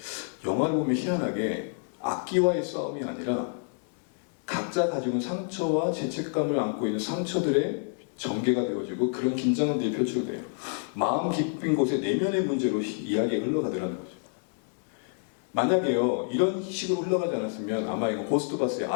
영화를 보면 희한하게 악기와의 싸움이 아니라 각자 가지고 있는 상처와 죄책감을 안고 있는 상처들의 전개가 되어지고 그런 긴장들이 펼쳐져요. 마음 깊은 곳에 내면의 문제로 이야기가 흘러가더라는 거죠. 만약에요 이런 식으로 흘러가지 않았으면 아마 이거 고스트바스의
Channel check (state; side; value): silent; right; 59 dB below the other